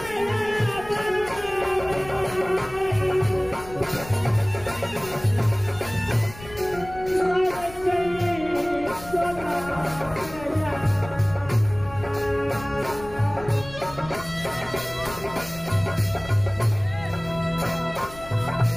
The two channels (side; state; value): left; noise; rumble, 17 dB below the sound